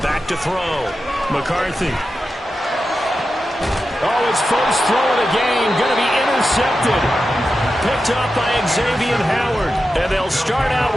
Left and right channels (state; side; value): normal; both; correlation 0.91